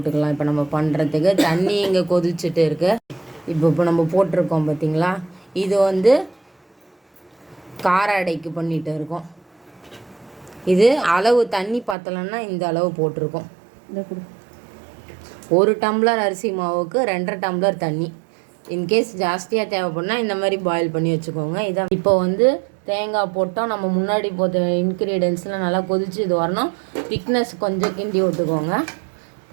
இப்போ நம்ம பண்ணுறதுக்கு தண்ணி இங்கே கொதிச்சுட்டு இருக்கு. இப்போ நம்ம போட்டிருக்கோம் பார்த்தீங்களா, இது வந்து கார அடைக்கு பண்ணிட்டு இருக்கோம். இது அளவு தண்ணி பார்த்தலன்னா இந்த அளவு போட்டிருக்கோம். 1 டம்ளர் அரிசி மாவுக்கு 2.5 டம்ளர் தண்ணி. இன்கேஸ் ஜாஸ்தியாக தேவைப்படுனா இந்த மாதிரி பாயில் பண்ணி வச்சுக்கோங்க. இதான் இப்போ வந்து தேங்காய் போட்டோம். நம்ம முன்னாடி போட்ட இன்க்ரீடியன்ஸ்லாம் நல்லா கொதிச்சு இது வரணும். திக்னஸ் கொஞ்சம் கிண்டி விட்டுக்கோங்க.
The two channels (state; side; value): drops out; left; at 12.0 s